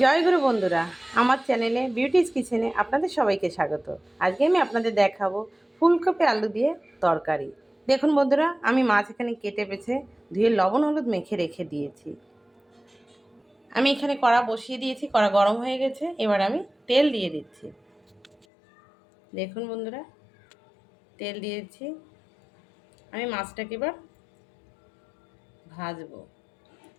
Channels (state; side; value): drops out; right; at 18.4 s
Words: গুরু বন্ধুরা, আমার চ্যানেলে বিউটিস কিচেনে আপনাদের সবাইকে স্বাগত। আজকে আমি আপনাদের দেখাবো ফুলকপি আলু দিয়ে তরকারি। দেখুন বন্ধুরা, আমি মাছ এখানে কেটে বেছে ধুয়ে লবণ হলুদ মেখে রেখে দিয়েছি। আমি এখানে কড়া বসিয়ে দিয়েছি, কড়া গরম হয়ে গেছে। এবার আমি তেল দিয়ে দিচ্ছি। দেখুন বন্ধুরা, তেল দিয়েছি। আমি মাছটাকে এবার ভাজবো।